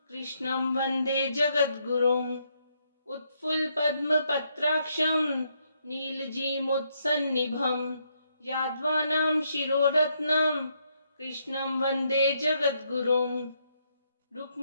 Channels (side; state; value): both; inverted; correlation -0.75